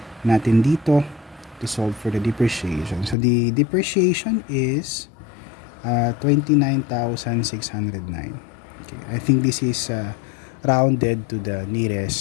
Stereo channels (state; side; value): drops out; right; at 3.2 s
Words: natin dito to solve for the depreciation. So the depreciation is 29,609. Okay, I think this is rounded to the